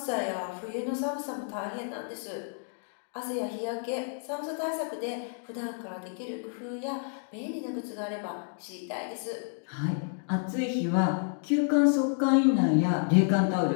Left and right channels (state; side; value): silent; right; digital silence